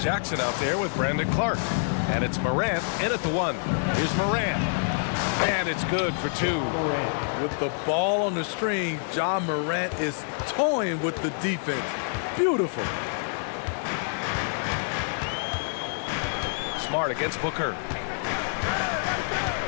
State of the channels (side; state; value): right; silent; digital silence